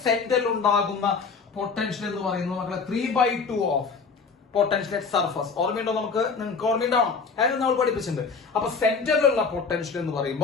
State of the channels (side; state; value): right; quieter; 5.0 dB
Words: സെന്ററിൽ ഉണ്ടാകുന്ന പൊട്ടൻഷ്യൽ എന്ന് പറയുന്നത് മക്കളെ 3/2 ഓഫ് പൊട്ടൻഷ്യൽ അറ്റ് സർഫസ്. ഓർമ്മയുണ്ടോ? നിങ്ങൾക്ക് ഓർമ്മയുണ്ടാവണം, അതായത് നമ്മൾ പഠിപ്പിച്ചിട്ടുണ്ട്. അപ്പൊ സെന്ററിലുള്ള പൊട്ടൻഷ്യൽ എന്ന്